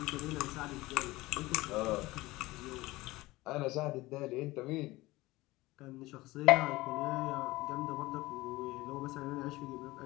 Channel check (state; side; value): quieter; right; 19.8 dB